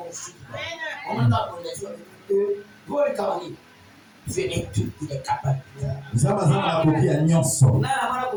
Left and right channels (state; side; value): identical; both; correlation 1.00